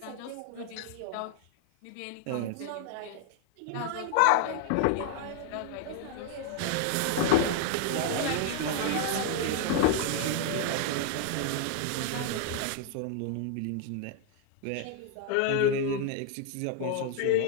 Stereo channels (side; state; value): both; different; correlation 0.00